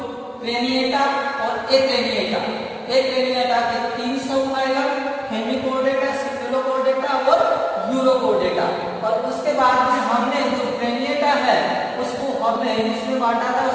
क्रेनिएटा और एक्रेनिएटा। एक्रेनिएटा के 3 समूह आएगा, हेमिकोर्डेटा, सिफेलोकोर्डेटा और यूरोकोर्डेटा। और उसके बाद में हमने जो क्रेनिएटा है उसको हमने इसमें बांटा था,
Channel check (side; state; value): both; identical; correlation 1.00